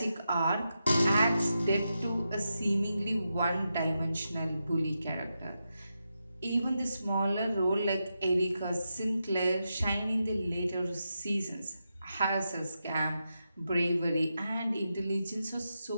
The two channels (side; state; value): both; inverted; correlation -0.87